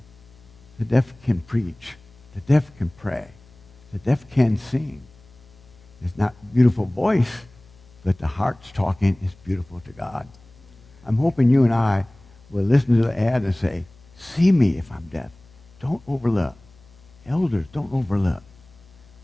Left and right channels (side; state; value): left; noise; hum, 27 dB below the sound